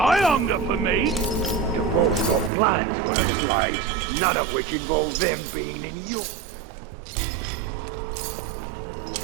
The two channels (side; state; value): left; drops out; at 2.5 s